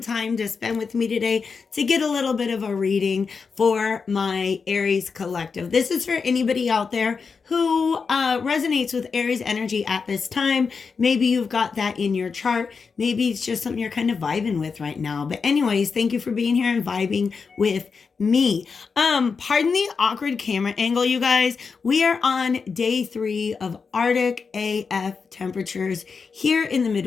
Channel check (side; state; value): right; quieter; 5.3 dB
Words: to spend with me today to get a little bit of a reading for my Aries collective. This is for anybody out there who resonates with Aries energy at this time. Maybe you've got that in your chart. Maybe it's just something you're kind of vibing with right now. But anyways, thank you for being here and vibing with me. Pardon the awkward camera angle, you guys. We are on day 3 of Arctic AF temperatures here in the